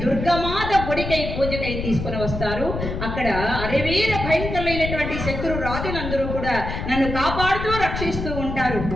దుర్గమాత గుడికై పూజకై తీసుకుని వస్తారు. అక్కడ అరవీర భయంకరమైనటువంటి శత్రు రాజులందరూ కూడా నన్ను కాపాడుతూ రక్షిస్తూ ఉంటారు.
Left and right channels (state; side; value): noise; left; rumble, 5 dB below the sound